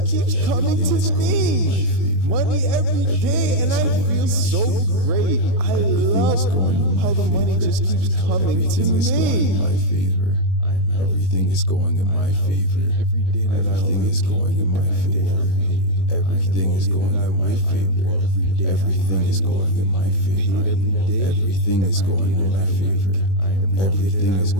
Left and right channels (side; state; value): right; late; 21 ms